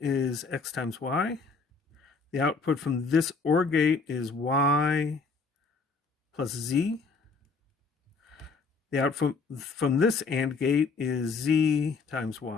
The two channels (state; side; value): quieter; right; 4.4 dB